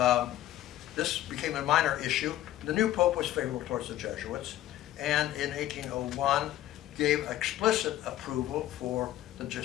this became a minor issue. The new Pope was favorable towards the Jesuits, and in 1801 gave explicit approval for the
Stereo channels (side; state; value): right; quieter; 13.7 dB